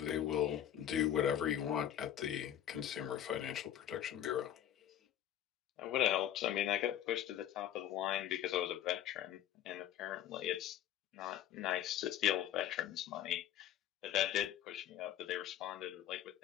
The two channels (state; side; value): quieter; right; 11.2 dB